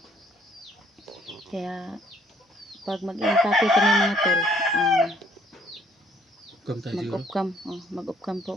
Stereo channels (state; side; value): normal; both; correlation 0.64